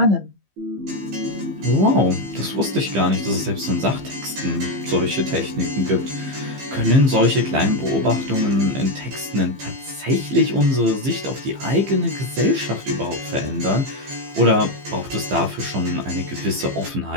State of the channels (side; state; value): left; late; 15 ms